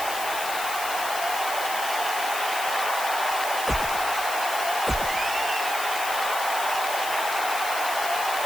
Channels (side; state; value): left; noise; hiss, 7 dB below the sound